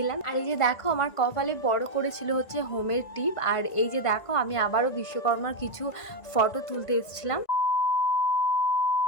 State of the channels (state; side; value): late; right; 1.5 ms